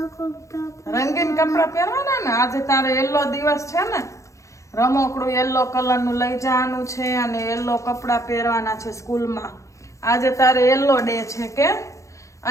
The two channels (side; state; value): right; late; 0.15 ms